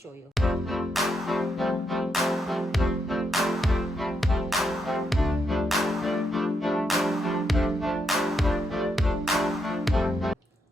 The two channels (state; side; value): normal; both; correlation 0.80